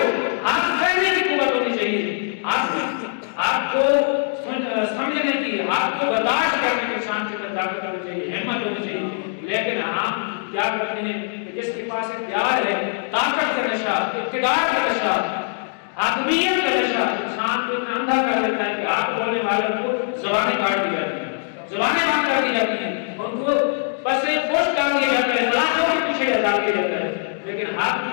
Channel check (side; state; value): right; silent; digital silence